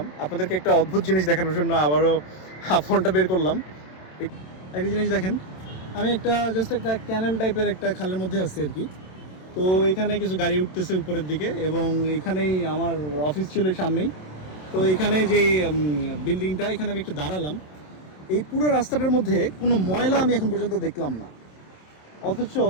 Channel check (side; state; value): right; late; 27 ms